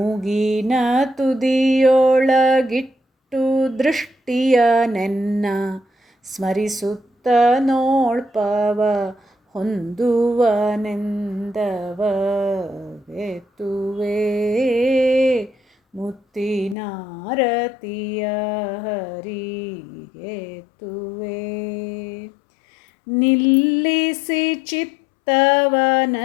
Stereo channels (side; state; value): right; drops out; at 16.8 s